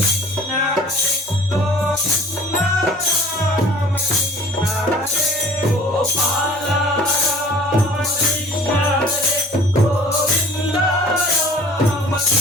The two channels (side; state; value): both; normal; correlation 0.49